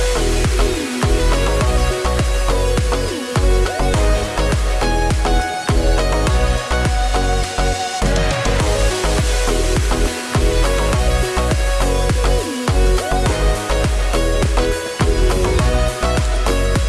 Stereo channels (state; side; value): identical; both; correlation 1.00